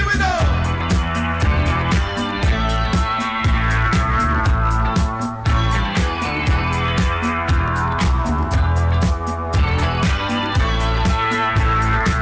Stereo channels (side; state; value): both; identical; correlation 1.00